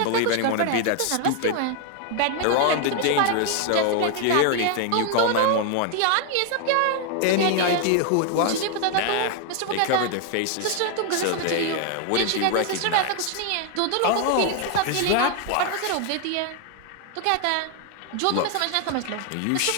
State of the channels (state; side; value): different; both; correlation 0.00